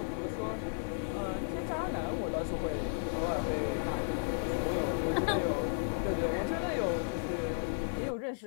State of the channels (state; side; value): silent; right; 55 dB below the other